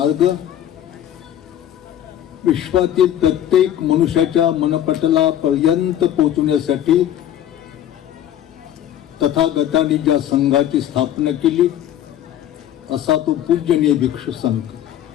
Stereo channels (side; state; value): right; quieter; 11.1 dB